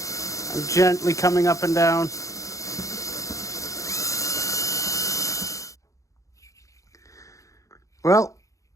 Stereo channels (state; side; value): late; right; 0.16 ms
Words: I'm gently coming up and down. Well,